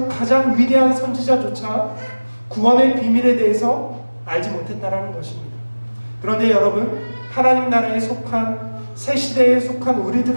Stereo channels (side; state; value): both; inverted; correlation -1.00